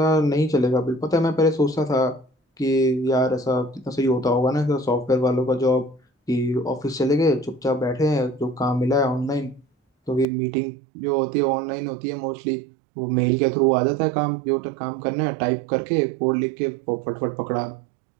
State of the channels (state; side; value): drops out; left; at 10.2 s